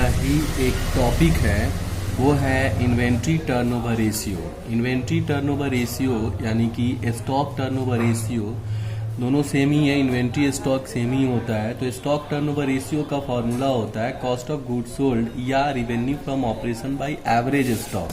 ही एक टॉपिक है, वो है inventory turnover ratio. Inventory turnover ratio यानी कि स्टॉक टर्नओवर रेशियो दोनों सेम ही है। इन्वेंट्री स्टॉक सेम ही होता है। तो स्टॉक टर्नओवर रेशियो का फॉर्मूला होता है कॉस्ट ऑफ गुड्स सोल्ड या revenue from operation by average stock.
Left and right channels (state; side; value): identical; both; correlation 1.00